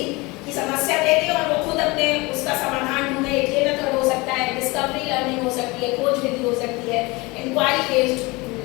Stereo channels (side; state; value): right; quieter; 24.2 dB